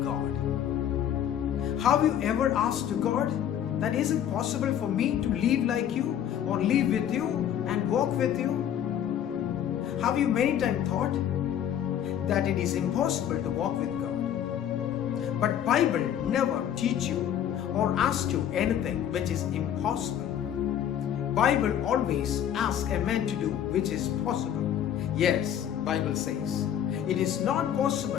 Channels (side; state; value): right; quieter; 10.0 dB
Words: God. Have you ever asked God that is it possible for me to live like you or live with you and walk with you? Have you many times thought that it is impossible to walk with God? But Bible never teach you or ask you anything which is impossible. Bible always asks a man to do which is possible. Yes, Bible says it is not